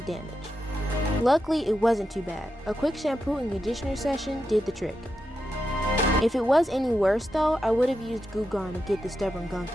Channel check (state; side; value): normal; both; correlation 0.87